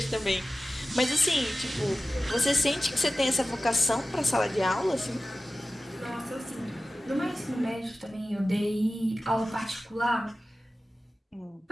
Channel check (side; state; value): both; normal; correlation 0.96